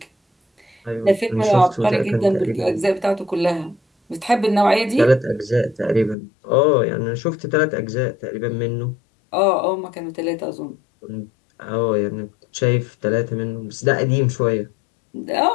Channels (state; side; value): drops out; right; at 6.2 s